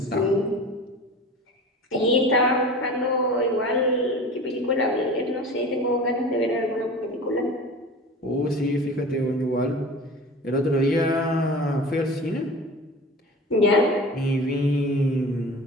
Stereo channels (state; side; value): normal; both; correlation 0.36